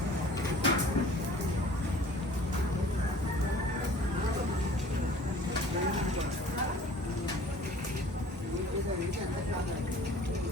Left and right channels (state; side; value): normal; both; correlation 0.49